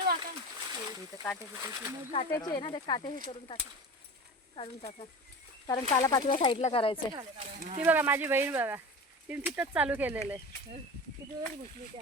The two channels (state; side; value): normal; both; correlation 0.32